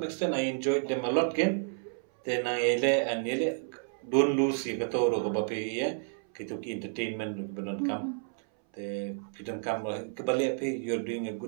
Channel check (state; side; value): silent; left; 57 dB below the other